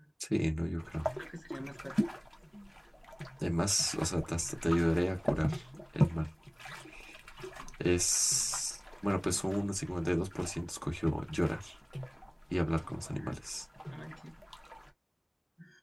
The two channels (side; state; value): both; identical; correlation 1.00